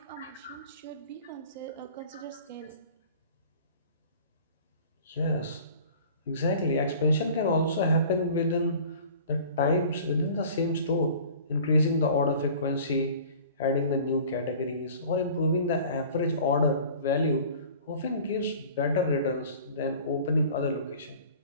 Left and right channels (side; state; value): both; inverted; correlation -0.45